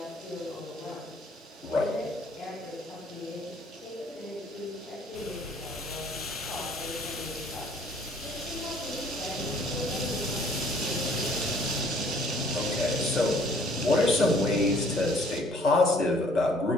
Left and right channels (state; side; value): normal; both; correlation 0.59